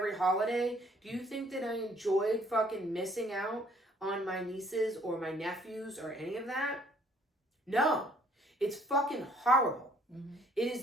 holiday? Do you think that I enjoyed fucking missing out on my nieces or my nephews or any of that? No. It's fucking horrible. Mm-hmm. It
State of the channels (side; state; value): both; normal; correlation 0.62